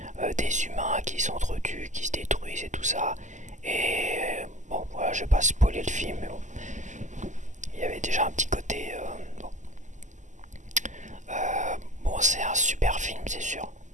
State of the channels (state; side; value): late; left; 0.35 ms